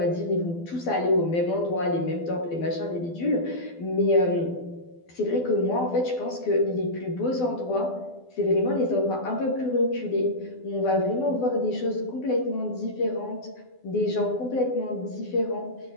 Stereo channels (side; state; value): right; late; 12 ms